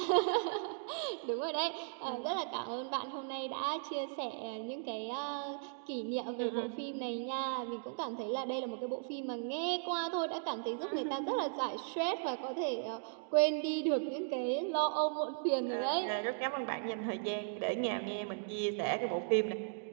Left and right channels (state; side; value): silent; left; digital silence